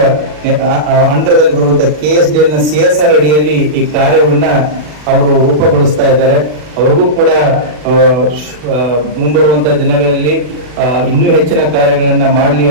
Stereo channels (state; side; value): late; left; 40 ms